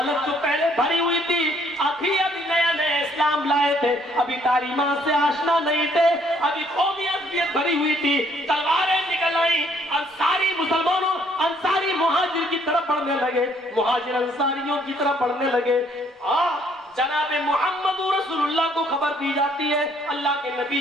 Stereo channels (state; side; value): normal; both; correlation 0.65